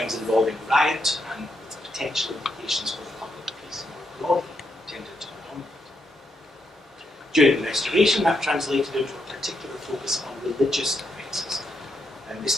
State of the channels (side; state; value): both; normal; correlation 0.80